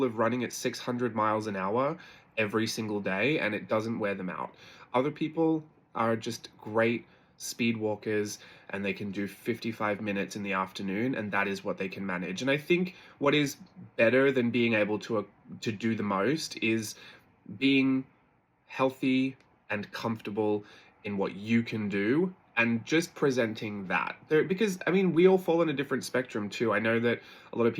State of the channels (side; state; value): both; identical; correlation 1.00